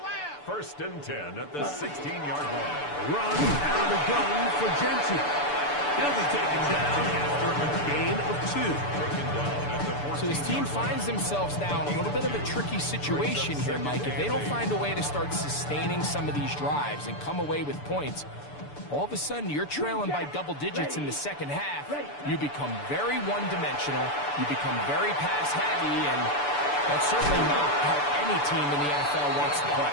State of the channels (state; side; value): late; right; 6.9 ms